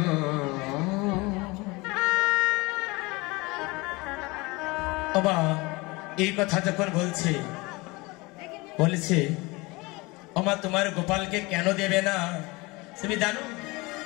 বল বাবা এই কথা যখন বলেছে ওমা তোমার গোপালকে কেন দেবে না তুমি জানো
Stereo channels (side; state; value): right; quieter; 24.3 dB